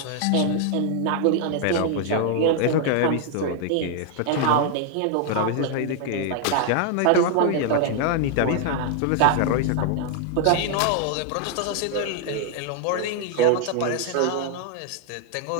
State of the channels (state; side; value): different; both; correlation 0.00